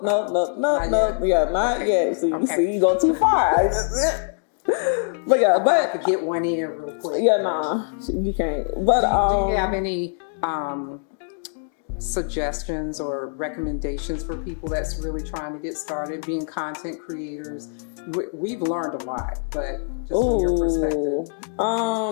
Yeah, not yet. So you see, you go too far. But yeah, I could get one in real quick. Yeah, nah, you can't. But do you have any suggestions or recommendations for people that's really trying to get started being content creators? We've learned a lot, but just from your perspective.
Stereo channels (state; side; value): silent; right; digital silence